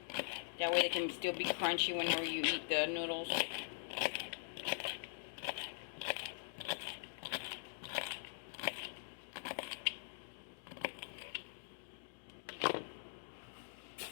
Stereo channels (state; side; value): silent; right; digital silence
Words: That way they can still be crunchy whenever you eat the noodles.